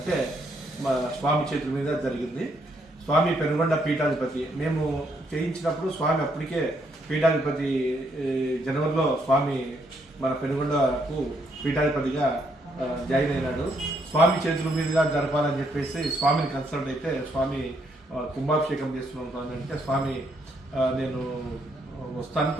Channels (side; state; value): both; normal; correlation 0.73